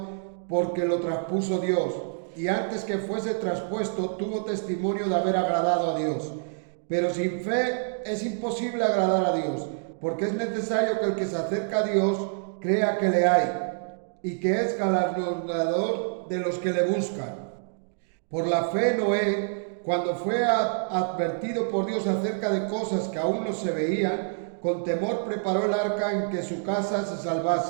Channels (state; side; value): silent; left; digital silence